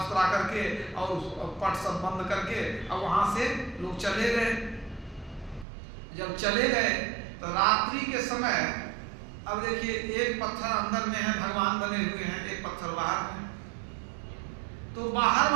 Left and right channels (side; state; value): left; drops out; at 5.7 s